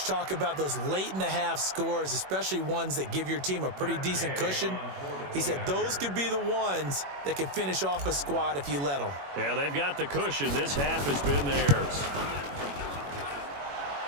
talk about those late-in-the-half scores, especially ones that give your team a pretty decent cushion. He said those could be the ones that can finish off a squad if you let them. Yeah, they've got the cushion. This half has been theirs.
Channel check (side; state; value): left; late; 21 ms